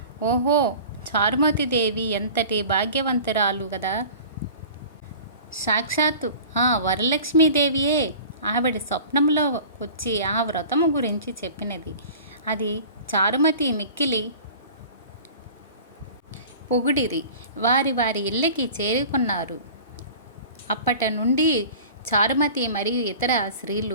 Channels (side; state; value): both; inverted; correlation -0.42